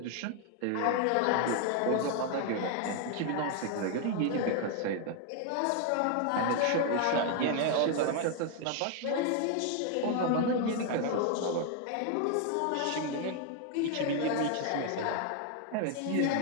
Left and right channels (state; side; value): different; both; correlation 0.00